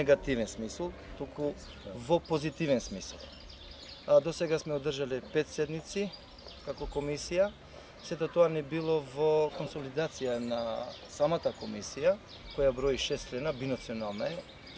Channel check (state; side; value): identical; both; correlation 1.00